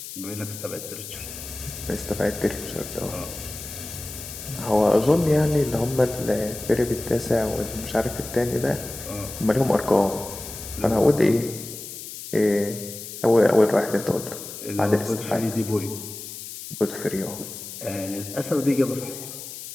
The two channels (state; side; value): noise; left; hiss, 11 dB below the sound